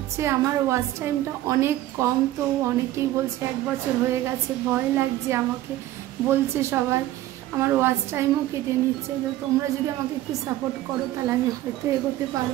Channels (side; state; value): left; quieter; 14.7 dB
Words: আমার ওয়াচ টাইমটা অনেক কম, তো অনেকেই বলছে 1 বছর হয়ে গেছে, ভয় লাগছে আমাকে বলছে সবাই। আমার ওয়াচ টাইমও কেটে নিচ্ছে। তো তোমরা যদি আমাকে একটু সাপোর্ট করো তাহলে আমি হয়তো এগোতে